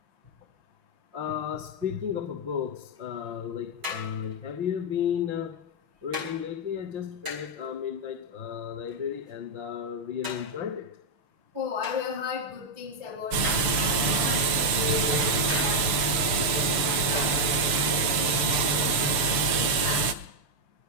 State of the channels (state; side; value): late; left; 6.8 ms